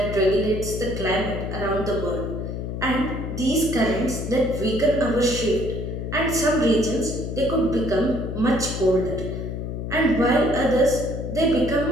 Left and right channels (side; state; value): left; noise; hum, 5 dB below the sound